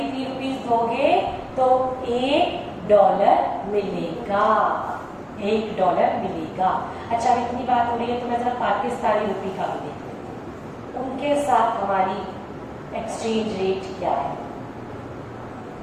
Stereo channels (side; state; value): both; identical; correlation 1.00